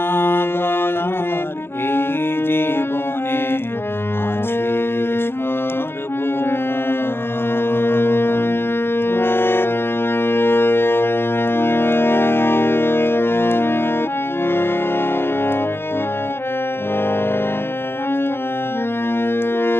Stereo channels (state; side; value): late; right; 0.11 ms